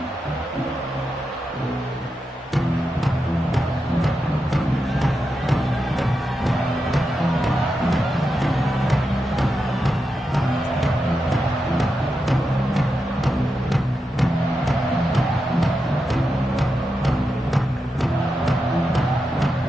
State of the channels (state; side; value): normal; both; correlation 0.88